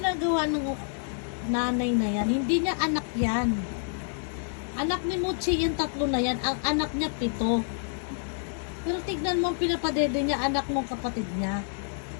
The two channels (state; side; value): silent; right; digital silence